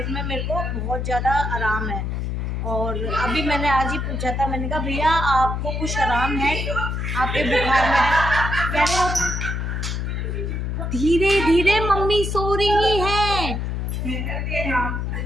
में मेरे को बहुत ज़्यादा आराम है। और अभी मैंने आज ही पूछा था, मैंने कहा भैया आपको कुछ आराम है आपके बुखार में? कह रहे हो धीरे धीरे मम्मी सो रही है,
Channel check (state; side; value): noise; left; hum, 2 dB below the sound